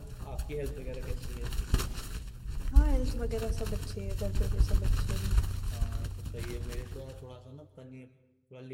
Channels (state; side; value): identical; both; correlation 1.00